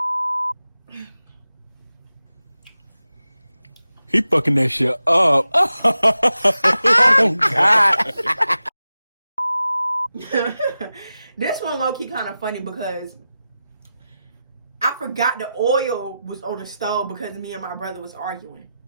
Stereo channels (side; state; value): both; inverted; correlation -0.92